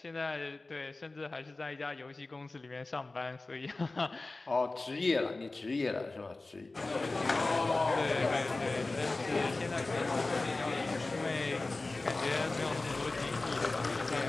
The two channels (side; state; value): right; quieter; 3.2 dB